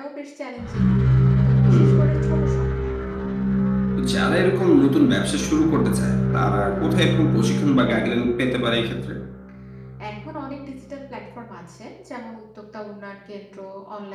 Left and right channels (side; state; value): both; identical; correlation 1.00